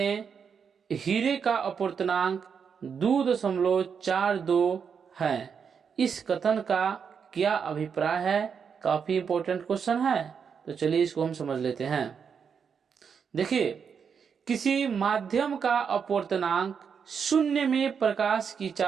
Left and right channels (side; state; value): left; quieter; 6.7 dB